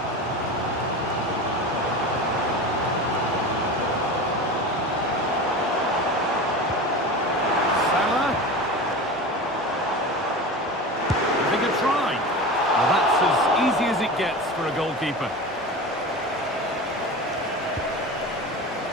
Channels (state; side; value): normal; both; correlation 0.29